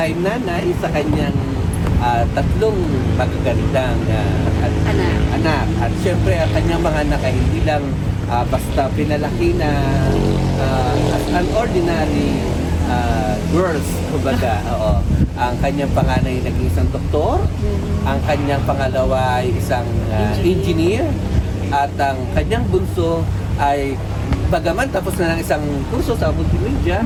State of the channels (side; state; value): both; identical; correlation 1.00